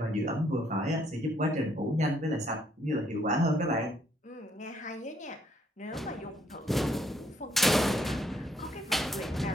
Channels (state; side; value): normal; both; correlation 0.70